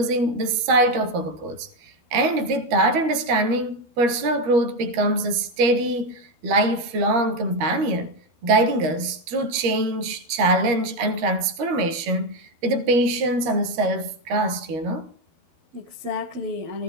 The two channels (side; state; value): left; late; 13 ms